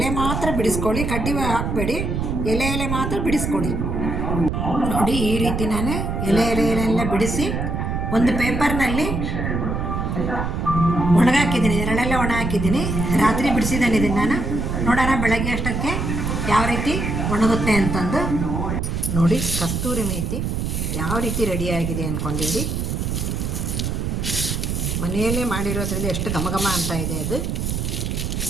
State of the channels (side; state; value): right; noise; rumble, 1 dB below the sound